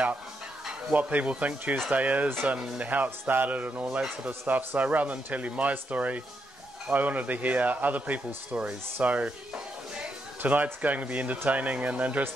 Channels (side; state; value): both; normal; correlation 0.80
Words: what people think Tuesday is and how it started and all that sort of stuff. So rather than tell you my story, I wanted to hear other people's stories. So tonight's going to be entertaining and